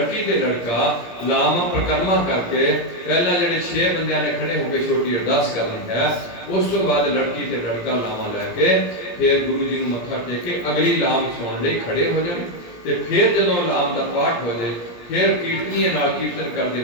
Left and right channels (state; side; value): late; right; 17 ms